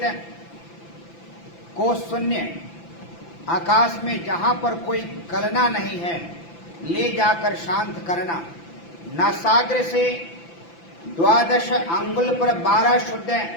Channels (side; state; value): right; late; 5.9 ms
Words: को शून्य आकाश में जहां पर कोई कलना नहीं है ले जाकर शांत करना। नासाग्र से 12 अंगुल पर 12 शुद्ध